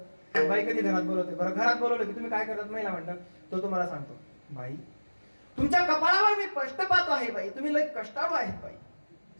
बाई कधी घरात बोलवते. बरं घरात बोलवलं की तुम्ही काय करतात महिला म्हणतात, तो तुम्हाला सांगतो, बाई तुमच्या कपाळावर मी कष्ट पाहतो आहे बाई, तुम्ही लय कष्टाळू आहेत बाई.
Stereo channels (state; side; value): inverted; both; correlation -1.00